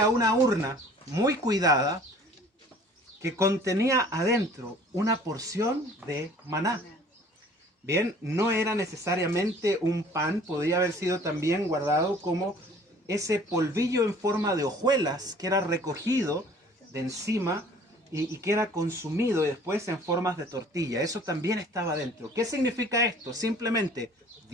una urna muy cuidada que contenía adentro una porción de maná. Bien, no era necesariamente un pan, podría haber sido también guardado como ese polvillo en forma de hojuelas que era recogido de encima y que era consumido después en formas de tortilla. Eso también estaba dentro. ¿Qué significa esto? Simplemente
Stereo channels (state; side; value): normal; both; correlation 0.51